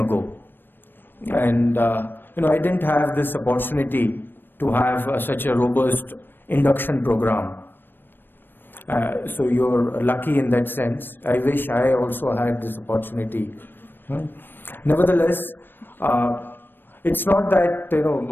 and I didn't have this opportunity to have such a robust induction program. So you're lucky in that sense. I wish I also had this opportunity. Nevertheless, it's not that,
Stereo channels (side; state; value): right; late; 0.096 ms